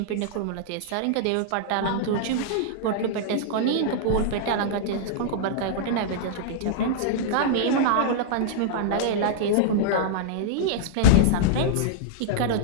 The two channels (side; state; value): both; different; correlation -0.01